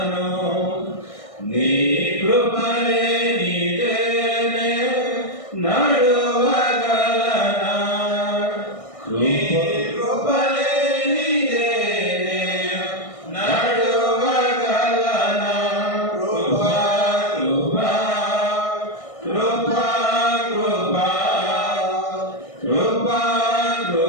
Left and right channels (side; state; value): right; late; 1.6 ms